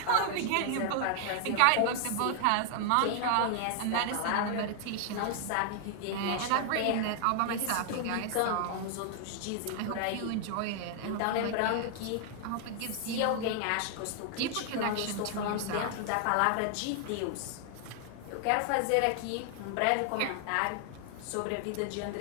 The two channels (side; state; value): both; different; correlation 0.00